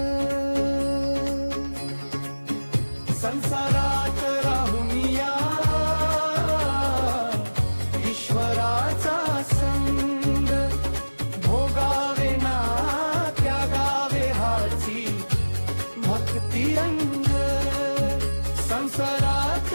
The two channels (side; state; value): both; inverted; correlation -1.00